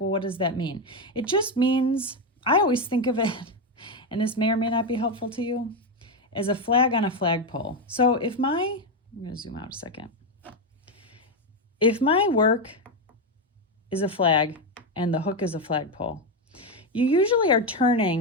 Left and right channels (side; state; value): both; normal; correlation 0.08